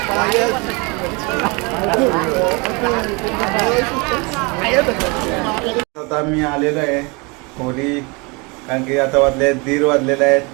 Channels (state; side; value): quieter; left; 28.9 dB